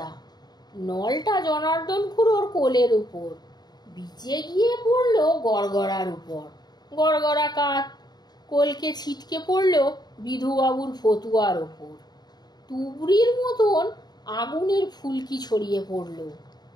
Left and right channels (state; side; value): late; right; 0.20 ms